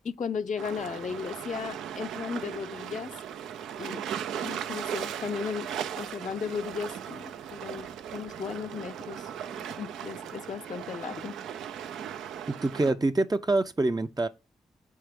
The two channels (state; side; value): normal; both; correlation 0.74